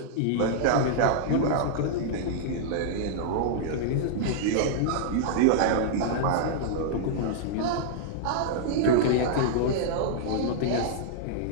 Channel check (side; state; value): both; different; correlation -0.02